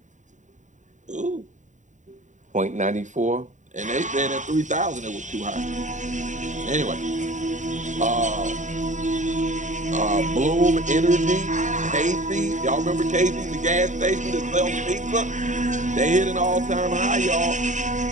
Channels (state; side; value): late; left; 0.36 ms